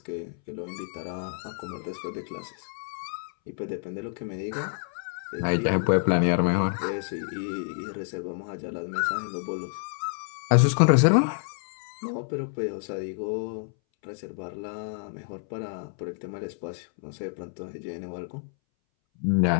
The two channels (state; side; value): silent; right; 59 dB below the other